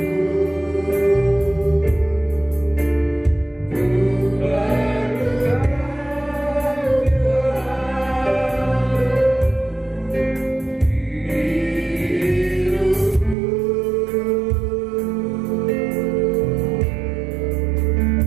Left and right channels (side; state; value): left; drops out; at 13.4 s